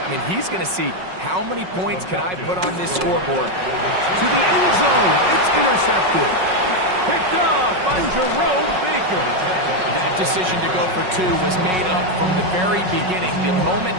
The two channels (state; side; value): late; left; 5.4 ms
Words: I mean, he's going to see how many points can I put on this scoreboard. To the end zone. It's intercepted. Picked off by Jerome Baker. That decision to go for 2 was made up from the very beginning. The moment